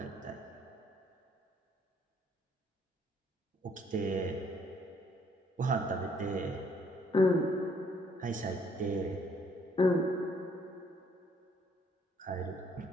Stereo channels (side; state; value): both; normal; correlation 0.65